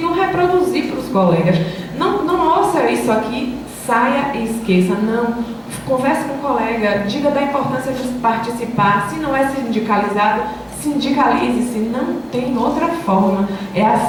reproduzir para os colegas. Não ouça isso aqui, saia e esqueça, não. Converse com o colega, diga da importância de participar, se não é sindicalizado, sindicalize-se, não tem outra forma. É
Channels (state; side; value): identical; both; correlation 1.00